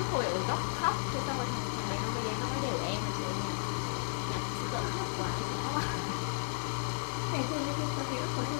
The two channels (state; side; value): silent; right; 55 dB below the other